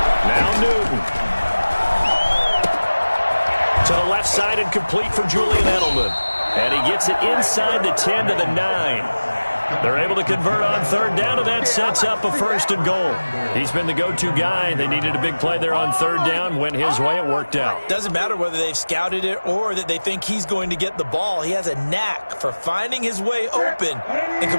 Now Newton. To the left side and complete for Julian Edelman. And he gets it inside the 10 to the 9. They're able to convert on 3rd down, and that sets up a 1st and goal. He's been the go-to guy. They needed a big play there on 3rd down. Went his way. It worked out. Doesn't matter whether they've scouted it or that they think he's going to get the ball. He has a knack for finding his way open and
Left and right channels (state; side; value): inverted; both; correlation -1.00